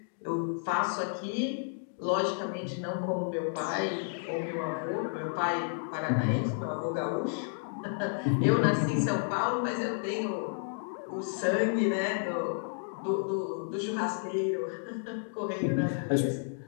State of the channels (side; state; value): right; silent; digital silence